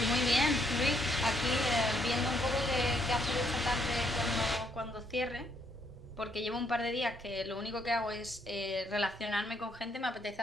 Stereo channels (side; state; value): both; normal; correlation 0.71